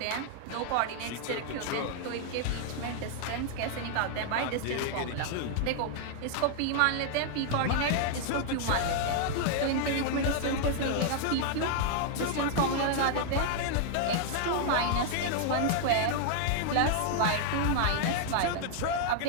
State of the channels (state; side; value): different; both; correlation 0.00